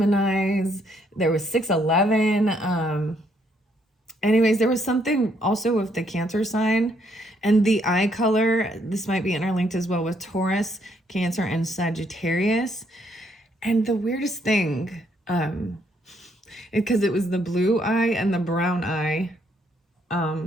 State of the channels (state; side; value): normal; both; correlation 0.71